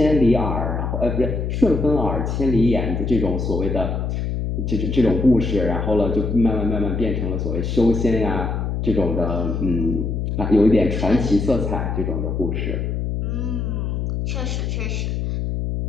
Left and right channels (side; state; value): left; noise; hum, 1 dB below the sound